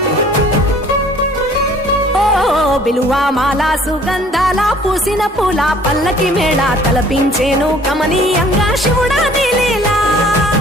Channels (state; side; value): normal; both; correlation 0.55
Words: విలువ మాల సుగంధాల పూసిన పూల పల్లకి మేళ తలపించేను కమనీయంగా శివుడా నీలీలా